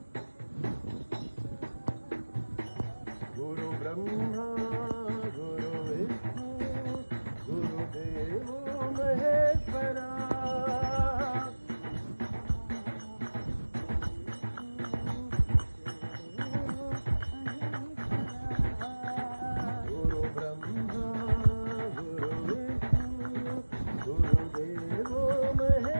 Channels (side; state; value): both; inverted; correlation -1.00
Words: गुरु ब्रह्मा गुरु विष्णु गुरुदेव महेश्वरा